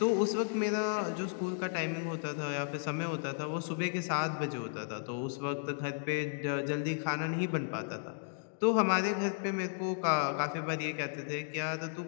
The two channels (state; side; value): silent; right; digital silence